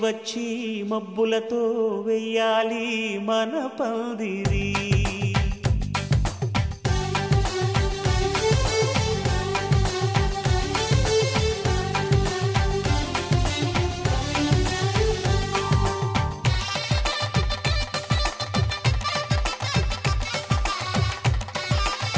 వచ్చి మబ్బులతో వెయ్యాలి మన పందిరి.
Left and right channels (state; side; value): identical; both; correlation 1.00